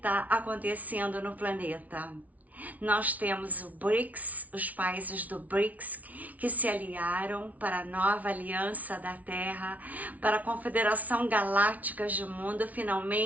acontecendo no planeta. Nós temos o BRICS, os países do BRICS, que se aliaram para a nova aliança da Terra, para a Confederação Galáctica do Mundo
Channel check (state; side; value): late; left; 0.072 ms